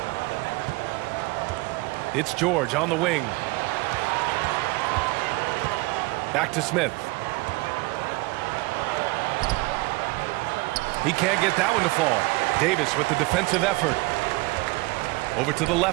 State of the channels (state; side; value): quieter; left; 23.7 dB